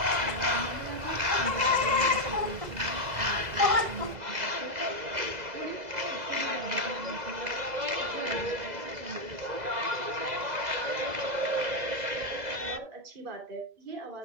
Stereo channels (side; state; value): left; late; 2.0 ms